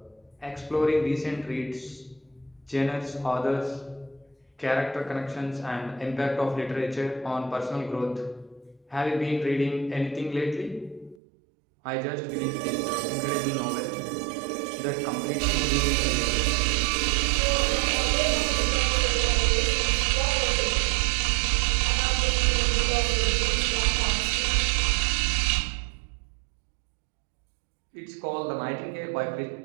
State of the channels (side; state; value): left; drops out; at 11.2 s